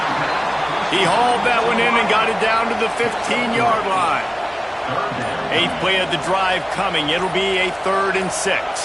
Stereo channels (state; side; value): identical; both; correlation 1.00